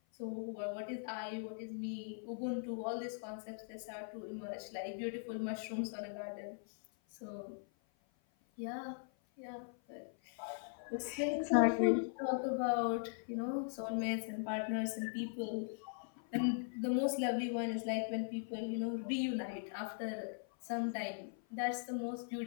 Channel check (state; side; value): silent; right; 51 dB below the other